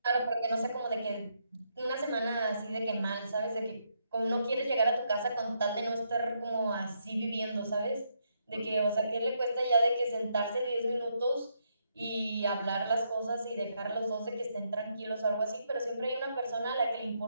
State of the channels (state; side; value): inverted; both; correlation -0.78